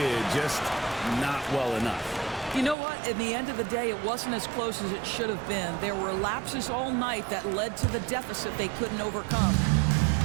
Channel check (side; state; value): left; drops out; at 2.8 s